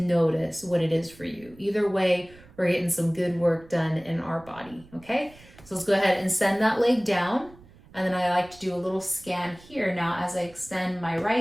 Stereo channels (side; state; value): right; noise; rumble, 24 dB below the sound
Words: what it is for you. Either way, we're getting some good work done in our body, okay? So let's go ahead and send that leg down. And then I like to do a little scan here now as I extend my